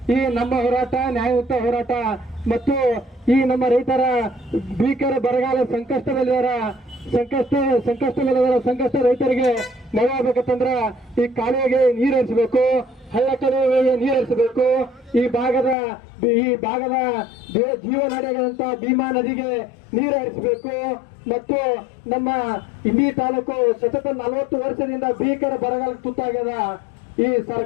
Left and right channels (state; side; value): drops out; right; at 15.8 s